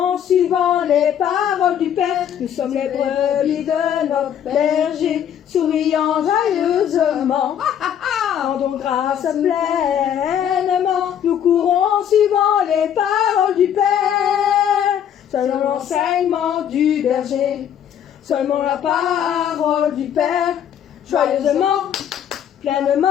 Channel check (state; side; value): quieter; right; 9.4 dB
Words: suivant les paroles du Père. Nous sommes les brebis de notre berger, souriant joyeusement. Rendons grâce pleinement, nous courons en suivant les paroles du Père. Selon l'enseignement du berger, seulement la parole du Père, joyeusement,